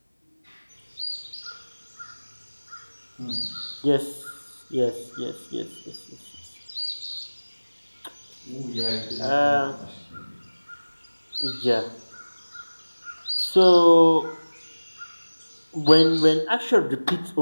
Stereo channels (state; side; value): inverted; both; correlation -1.00